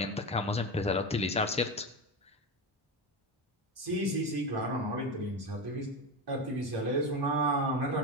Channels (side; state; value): both; normal; correlation 0.19